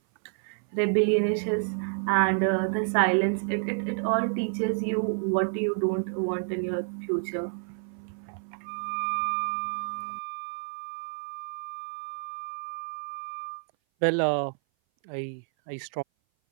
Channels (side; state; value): left; silent; 57 dB below the other